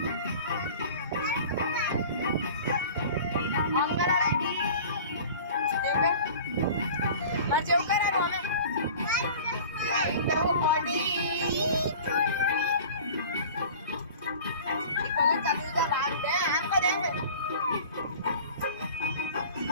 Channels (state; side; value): inverted; both; correlation -0.42